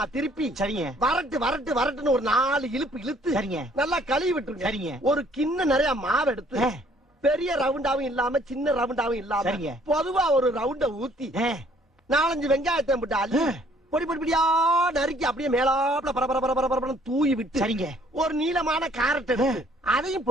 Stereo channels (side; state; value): both; normal; correlation 0.61